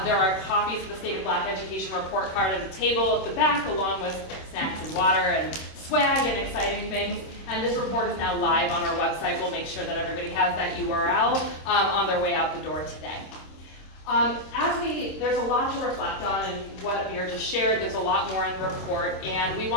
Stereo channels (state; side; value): late; right; 26 ms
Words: There are copies of the State of Black Education report card at the table at the back, along with snacks and water and swag and exciting things. And this report is now live on our website. We'll make sure that everybody has that URL on their way out the door today. There's a lot to reflect on in what Amir just shared. There's a lot more in the report, and we